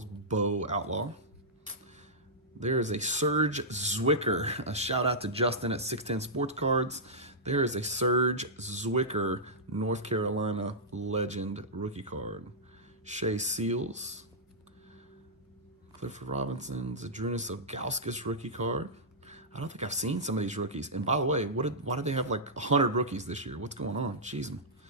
Bowe Outlaw. There is a Serge Zwicker. A shout out to Justin at 610 Sports Cards. There is a Serge Zwicker, North Carolina legend rookie card. Shea Seals. Clifford Robinson. Zadrunas Ilgauskas rookie card. I don't think I've seen some of these rookies. And by the way, why did they have like 100 rookies this year? What's going on? Jeez.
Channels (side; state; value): both; normal; correlation -0.12